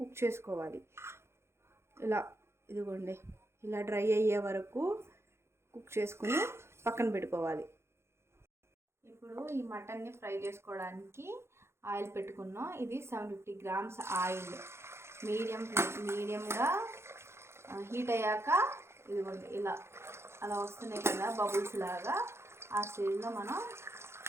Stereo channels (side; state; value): left; late; 0.12 ms